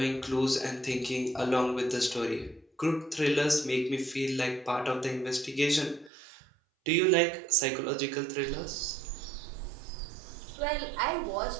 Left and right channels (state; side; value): drops out; left; at 6.1 s